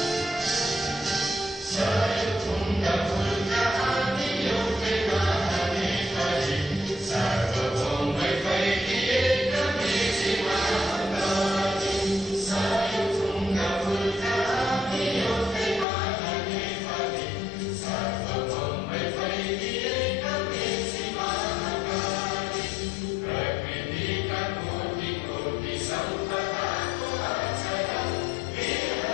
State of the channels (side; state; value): right; drops out; at 15.9 s